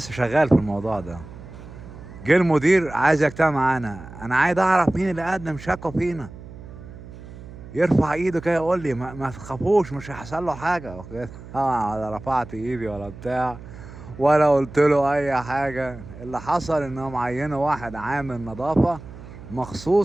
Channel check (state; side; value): noise; right; hum, 15 dB below the sound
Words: شغال في الموضوع ده، جه المدير عايز يجتمع معانا. انا عايز اعرف مين اللي قدم شكوى فينا، يرفع ايده كده يقول لي ما تخافوش مش هيحصل له حاجه. اوكي، طبعا ولا رفعت ايدي ولا بتاع ولا قلت له اي حاجه. اللي حصل انهم عينوا واحد عامل نظافه